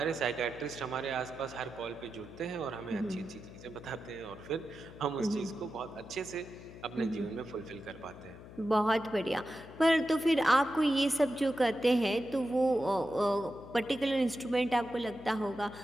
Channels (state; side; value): noise; left; hum, 16 dB below the sound